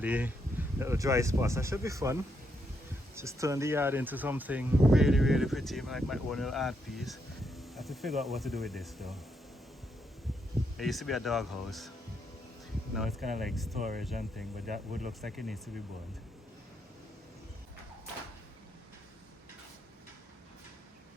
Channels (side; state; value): both; normal; correlation 0.79